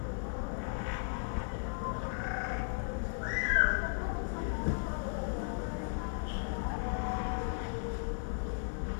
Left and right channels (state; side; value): silent; right; digital silence